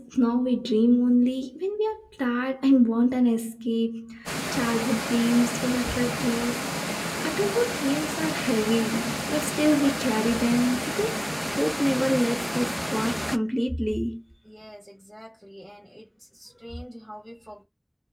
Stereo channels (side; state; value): both; identical; correlation 1.00